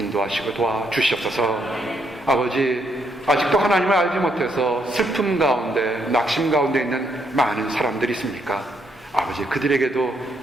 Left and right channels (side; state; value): both; normal; correlation 0.75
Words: 도와주시옵소서. 아버지, 아직도 하나님을 알지 못해서 슬픔 가운데 낙심 가운데 있는 많은 사람들이 있습니까? 아버지, 그들에게도